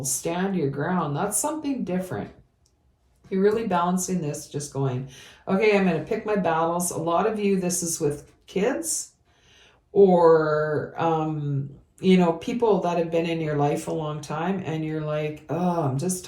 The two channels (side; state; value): both; identical; correlation 1.00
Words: stand your ground. That's something different. You're really balancing this, just going, okay, I'm going to pick my battles. A lot of you, this is with kids or, people that have been in your life a long time and you're like, oh, I'm just